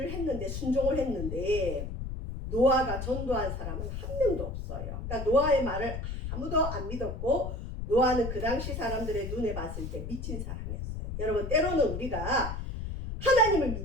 했는데 순종을 했는데 노아가 전도한 사람은 한 명도 없어요. 그러니까 노아의 말을 아무도 안 믿었고 노아는 그 당시 사람들의 눈에 봤을 때 미친 사람이었어요. 여러분 때로는 우리가 하나님을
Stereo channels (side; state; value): left; noise; rumble, 5 dB below the sound